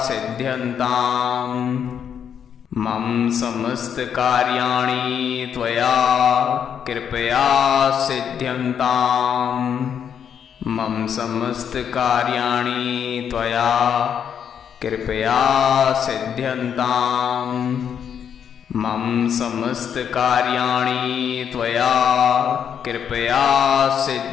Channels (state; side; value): quieter; right; 8.2 dB